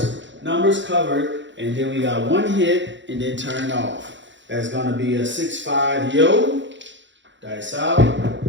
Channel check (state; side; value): late; left; 0.54 ms